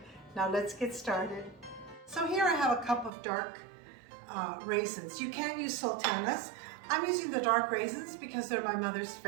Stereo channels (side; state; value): left; drops out; at 3.1 s